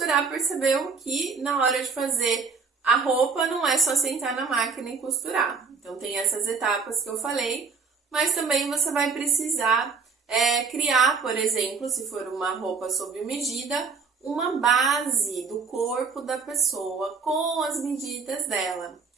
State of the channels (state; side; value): quieter; left; 5.3 dB